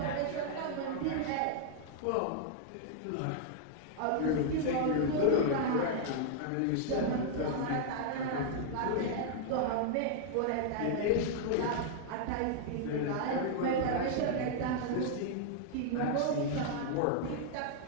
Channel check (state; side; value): different; both; correlation -0.01